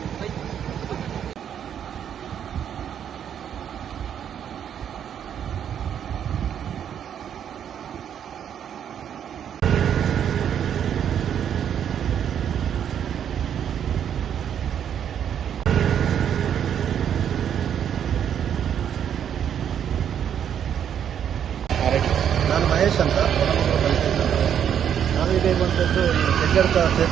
ನಾನು ಮಹೇಶ್ ಅಂತ ನಾನು ಇರುವಂಥದ್ದು ಈ ಹೆಗ್ಗಡ್ಕ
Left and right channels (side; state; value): left; quieter; 9.0 dB